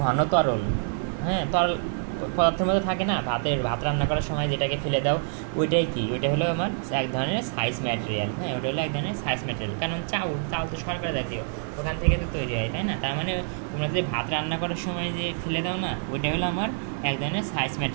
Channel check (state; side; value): silent; left; 55 dB below the other